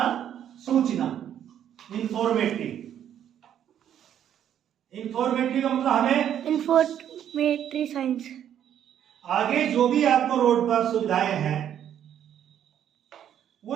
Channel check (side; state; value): left; quieter; 10.0 dB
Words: सूचना, इंफॉर्मेटरी। इंफॉर्मेटरी का मतलब हमें इंफॉर्मेटरी साइंस, आगे जो भी आपको रोड पर सुविधाएं हैं